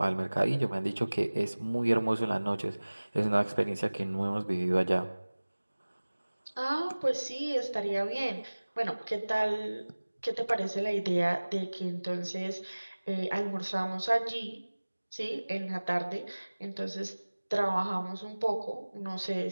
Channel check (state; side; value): inverted; both; correlation -1.00